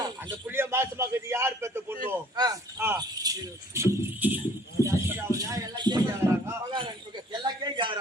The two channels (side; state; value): both; normal; correlation 0.55